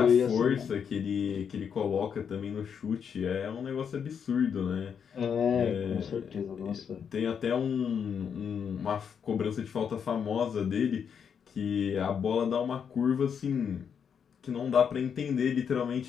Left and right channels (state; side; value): quieter; right; 7.3 dB